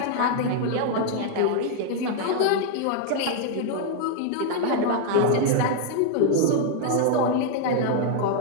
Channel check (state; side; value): different; both; correlation 0.00